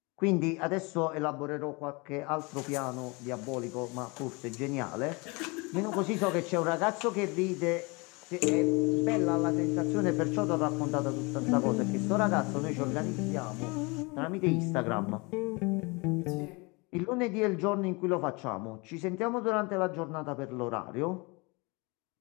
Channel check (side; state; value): right; quieter; 27.7 dB